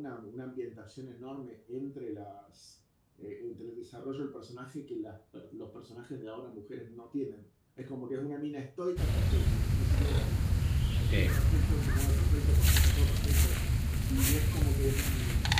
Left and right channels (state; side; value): identical; both; correlation 1.00